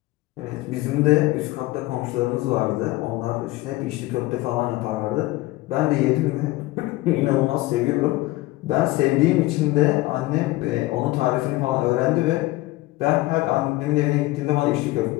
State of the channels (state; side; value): quieter; right; 18.8 dB